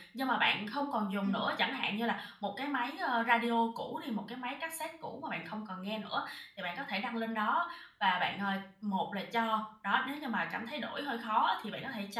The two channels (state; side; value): identical; both; correlation 1.00